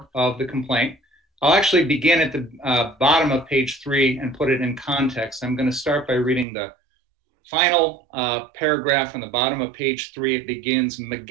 of the complaint. I'll actually begin at the bottom of page 3 and put it in context. I'm going to start by reading the final paragraph on the bottom of page 3. It begins,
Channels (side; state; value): left; drops out; at 6.5 s